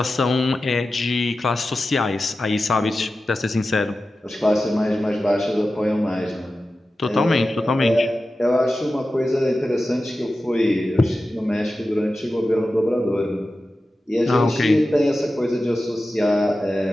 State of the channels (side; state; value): both; normal; correlation 0.93